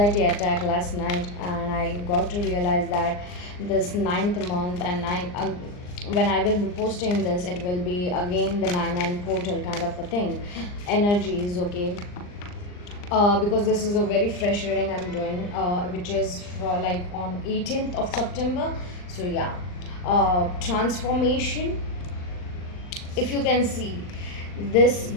attack last night. And I got to realize that this ninth month and when I will be posting this, it will be again the 9 portal kind of a thing, energies. Okay, because this is a very fresh reading I'm doing, which is for like on 18th of September. So yeah, transformation. If you can see, this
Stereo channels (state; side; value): late; right; 39 ms